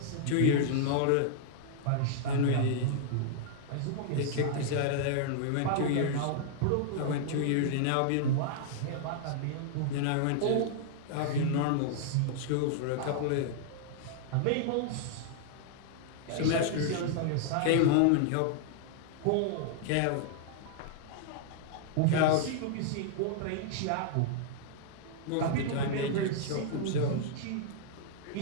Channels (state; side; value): different; both; correlation -0.01